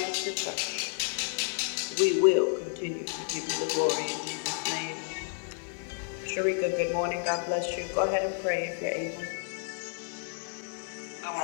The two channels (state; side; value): silent; right; 55 dB below the other